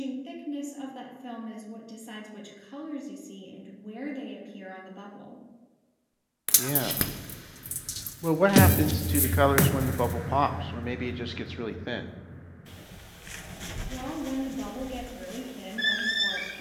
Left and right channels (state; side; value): identical; both; correlation 1.00